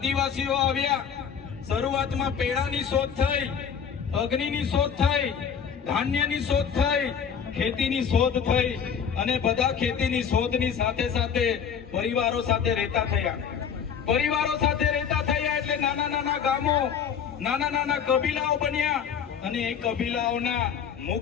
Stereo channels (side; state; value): right; quieter; 7.3 dB